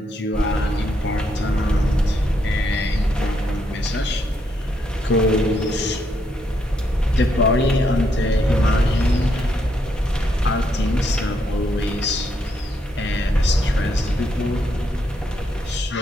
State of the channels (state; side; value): normal; both; correlation 0.76